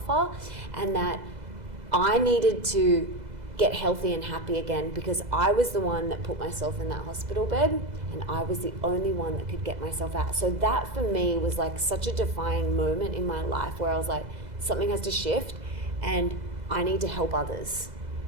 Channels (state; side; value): late; left; 2.0 ms